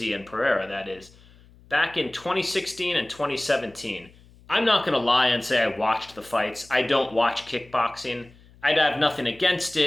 and Pereira, that is, back in 2016 and 2017. I'm not going to lie and say I watched the fights. I don't watch kickboxing. I'd have nothing against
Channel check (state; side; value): noise; left; hum, 26 dB below the sound